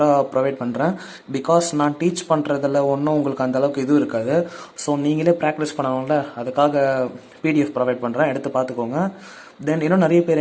ப்ரொவைட் பண்ணுறேன். பிகாஸ் நான் டீச் பண்ணுறதில் ஒன்றும் உங்களுக்கு அந்தளவுக்கு இது இருக்காது. ஸோ நீங்களே ப்ராக்டிஸ் பண்ணணும்ல, அதுக்காக PDF ப்ரொவைட் பண்ணுறேன், எடுத்து பார்த்துக்கோங்க. தென் இன்னும் நிறைய பேர்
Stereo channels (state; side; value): identical; both; correlation 1.00